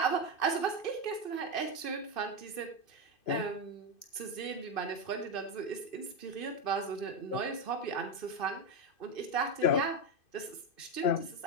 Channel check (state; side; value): late; right; 2.5 ms